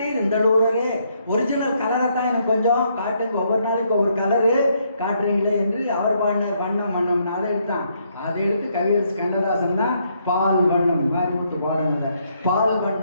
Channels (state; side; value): inverted; both; correlation -0.73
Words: இந்தளூரரே. ஒரிஜினல் கலரை தான் எனக்கு கொஞ்சம் காட்டுங்க, ஒவ்வொரு நாளைக்கு ஒவ்வொரு கலரு காட்டுறீங்களே என்று அவர் பாடினார். வண்ணம் வண்ணம் அதை எடுத்தான். அதை எடுத்து கவியரசு கண்ணதாசன் தான் பால் வண்ணம் மாரிமுத்து பாடுங்க. பால்